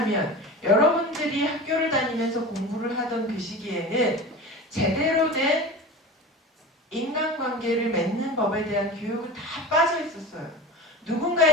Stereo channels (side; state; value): both; normal; correlation 0.33